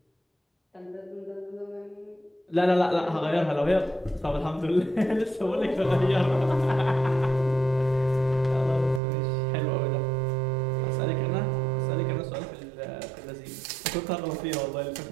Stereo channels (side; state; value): left; drops out; at 9.0 s